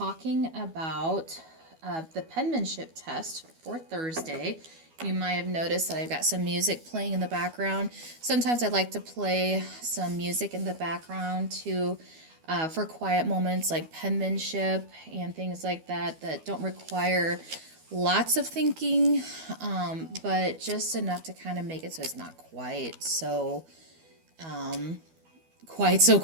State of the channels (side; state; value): left; late; 12 ms